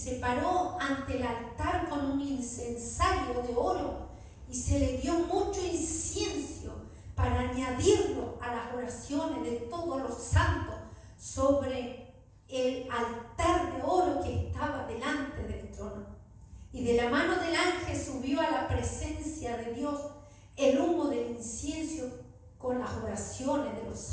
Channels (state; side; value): identical; both; correlation 1.00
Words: paró ante el altar con un incensario de oro, y se le dio mucho incienso para añadirlo a las oraciones de todos los santos sobre el altar de oro que estaba delante del trono. Y de la mano del ángel subió a la presencia de Dios el humo del incienso con las oraciones de los